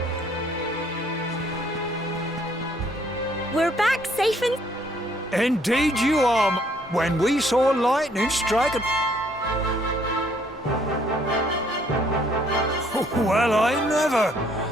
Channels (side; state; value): both; normal; correlation 0.65